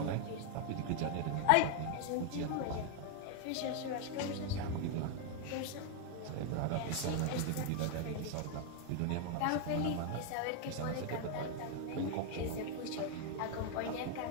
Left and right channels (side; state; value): both; different; correlation 0.00